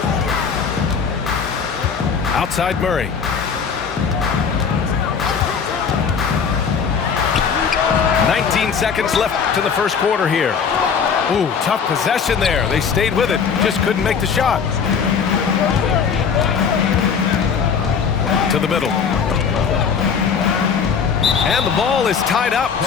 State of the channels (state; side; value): quieter; right; 6.4 dB